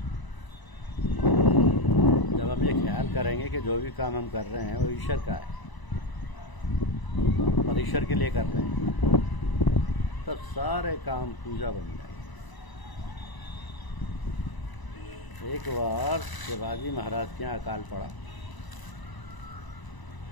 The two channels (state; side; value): late; right; 1.0 ms